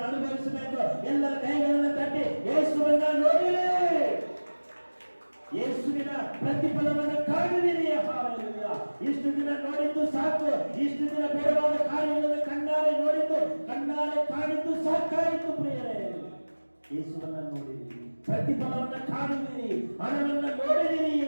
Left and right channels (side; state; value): both; inverted; correlation -1.00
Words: ಅನುಭವಿಸಬೇಕು. ಎಲ್ಲರ ಕೈಗಳನ್ನು ತಟ್ಟಿ ಯೇಸುವನ್ನ ನೋಡಿರಿ, ಯೇಸುವಿನ ಪ್ರತಿಫಲವನ್ನು ಕಾಣುವಿರಿ. ಹಾಲೆಲೂಯಾ. ಇಷ್ಟು ದಿನ ನೋಡಿದ್ದು ಸಾಕು, ಇಷ್ಟು ದಿನ ಬೇಡವಾದ ಕಾರ್ಯಗಳನ್ನು ಕಣ್ಣಾರೆ ನೋಡಿದ್ದು, ಕಣ್ಣಾರೆ ಕಾಣಿದ್ದು ಸಾಕಾಯಿತು ಪ್ರಿಯರೇ. ಯೇಸುವನ್ನ ನೋಡಿರಿ, ಪ್ರತಿಫಲವನ್ನು ಕಾಣುವಿರಿ, ಹಣವನ್ನು ನೋಡಿದಿರಿ